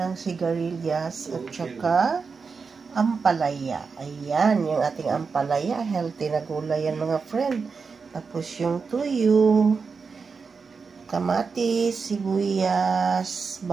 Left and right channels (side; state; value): left; quieter; 5.1 dB